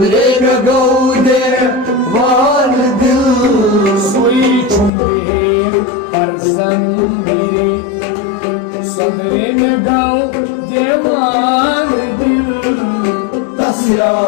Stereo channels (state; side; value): drops out; right; at 4.9 s